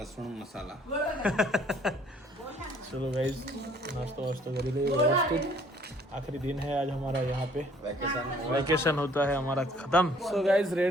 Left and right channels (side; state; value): both; normal; correlation 0.59